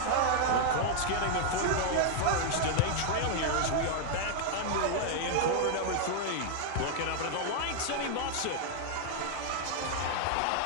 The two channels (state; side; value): different; both; correlation 0.00